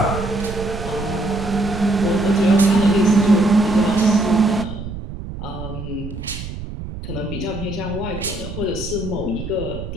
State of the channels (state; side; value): noise; right; rumble, 9 dB below the sound